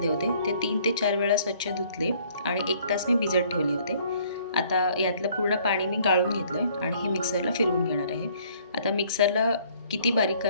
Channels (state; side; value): inverted; both; correlation -0.61